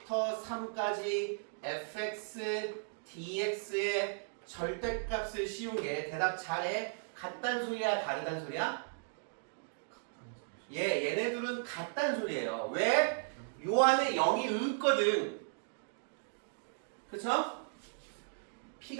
3까지 fx dx의 절대값을 씌운 게 대답 잘해. 같단 소리야 다르단 소리야? 얘네들은 같단 소리예요. 왜? 요 안에 0이 있거든. 그쵸?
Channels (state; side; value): silent; left; digital silence